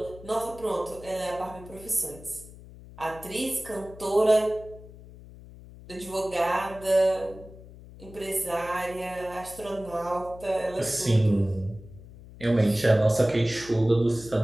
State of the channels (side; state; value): left; noise; hum, 18 dB below the sound